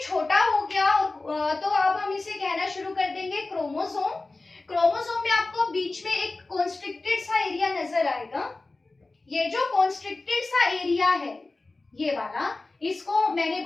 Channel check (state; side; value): quieter; right; 3.3 dB